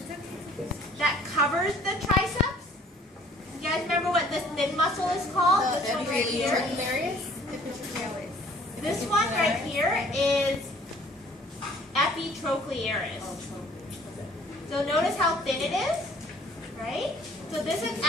that covers the triceps. You guys remember what this thin muscle is called? This one right here. This one right here is epitrochlearis. So notice how thin it is, right? So this is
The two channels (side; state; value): both; normal; correlation 0.56